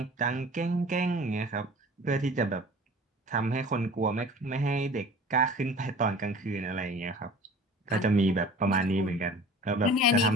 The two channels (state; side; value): normal; both; correlation 0.43